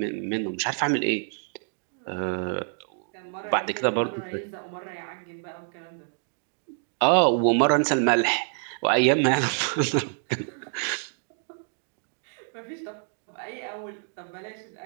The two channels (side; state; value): left; silent; 60 dB below the other